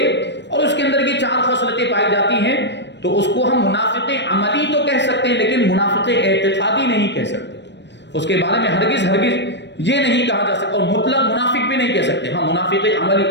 اور اس کے اندر یہ 4 خصلتیں پائی جاتی ہیں، تو اس کو ہم منافق عملی تو کہہ سکتے ہیں، لیکن منافق اعتقادی نہیں کہہ سکتے۔ اس کے بارے میں ہرگز یہ نہیں کہا جا سکتا، اور مطلق منافق بھی نہیں کہہ سکتے۔ ہاں، منافق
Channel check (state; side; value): late; right; 0.51 ms